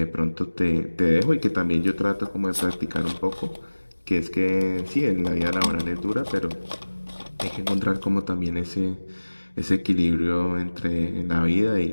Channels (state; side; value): inverted; both; correlation -1.00